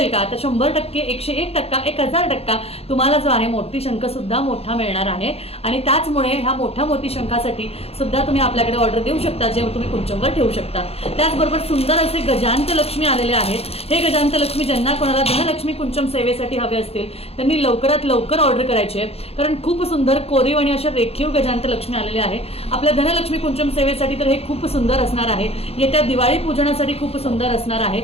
का? तर 100%, 101%, 1000% तुम्हाला जो आहे मोती शंख सुद्धा मोठा मिळणार आहे आणि त्याचमुळे ह्या मोठ्या मोती शंखासाठी सुद्धा तुम्ही आपल्याकडे ऑर्डर देऊ शकता, जे तुम्ही कुंचमवर ठेवू शकता। त्याचबरोबर सुंदर असे गजांत लक्ष्मी आलेले आहेत। हे गजांत लक्ष्मी ज्यांना कोणाला धनलक्ष्मी कुंचम सेवेसाठी हवे असतील त्यांनी लवकरात लवकर ऑर्डर करायची आहे, कारण खूप सुंदर कोरीव आणि अशा रेखीव गजांत लक्ष्मी आलेले आहे आपल्या धनलक्ष्मी कुंचम सेवेसाठी। तर हे खूप सुंदर असणार आहे, येत्या दिवाळी पूजनासाठी खूप सुंदर असणार आहे।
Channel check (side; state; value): right; late; 0.29 ms